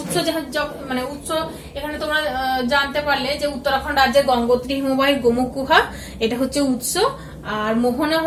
মানে উৎস এখানে তোমরা জানতে পারলে যে উত্তরাখণ্ড রাজ্যের গঙ্গোত্রী হিমবাহের গোমুখ গুহা, এটা হচ্ছে উৎস, আর মোহনা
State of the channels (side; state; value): both; identical; correlation 1.00